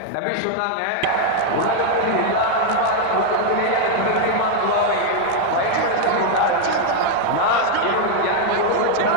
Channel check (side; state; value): both; different; correlation 0.00